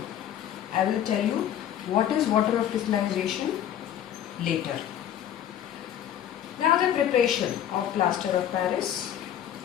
I will tell you what is water of crystallization later. Now the preparation of plaster of Paris,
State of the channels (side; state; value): right; quieter; 10.6 dB